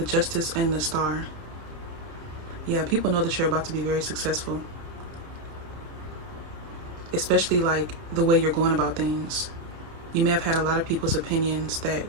Justice, and the Star. Yeah, people know that you're about to be very successful, especially like the way you're going about things. You may have had a lot of people's opinions that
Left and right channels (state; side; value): late; left; 30 ms